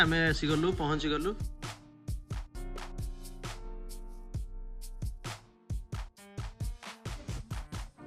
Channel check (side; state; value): both; identical; correlation 1.00